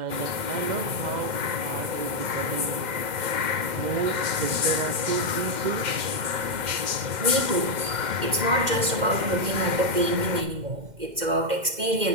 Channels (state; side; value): late; left; 2.1 ms